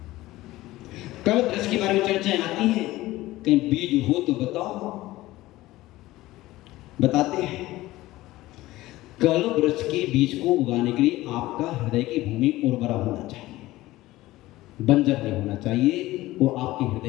कल वृक्ष के बारे में चर्चाएं आती हैं, कहीं बीज हो तो बताओ। बताते हैं कल वृक्ष के बीज को उगाने के लिए आपका हृदय की भूमि उर्वरा होना चाहिए, बंजर नहीं होना चाहिए। वो आपके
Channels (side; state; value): right; quieter; 17.4 dB